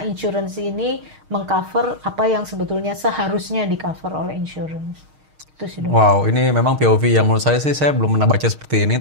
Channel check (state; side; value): late; left; 6.5 ms